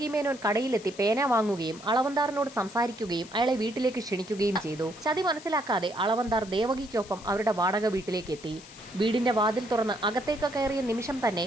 മേനോൻ കടയിലെത്തി പേന വാങ്ങുകയും അളവന്താറിനോട് സംസാരിക്കുകയും അയാളെ വീട്ടിലേക്ക് ക്ഷണിക്കുകയും ചെയ്തു. ചതി മനസ്സിലാക്കാതെ അളവന്താർ ദേവകിക്കൊപ്പം അവരുടെ വാടക വീട്ടിലേക്ക് എത്തി. വീടിന്റെ വാതിൽ തുറന്ന് അകത്തേക്ക് കയറിയ നിമിഷം തന്നെ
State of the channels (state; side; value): noise; left; hiss, 19 dB below the sound